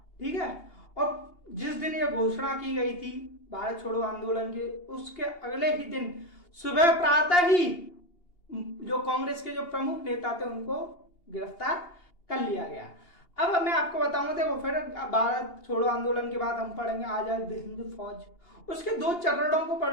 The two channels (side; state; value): right; late; 2.8 ms